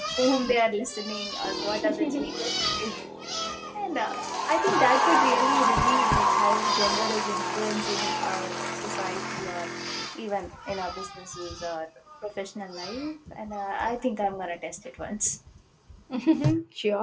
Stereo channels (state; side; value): identical; both; correlation 1.00